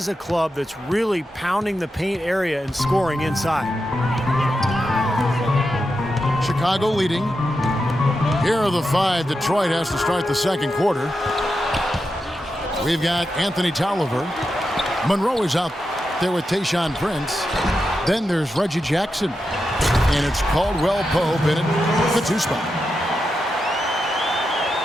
a club that's really pounding the paint area and scoring inside. Chicago leading. Here are the 5 Detroit has to start the second quarter. We've got Anthony Tolliver. Monroe is out there with Tayshaun Prince. Then there's Reggie Jackson. And it's Caldwell Pope in it, the 2 spot.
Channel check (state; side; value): normal; both; correlation 0.88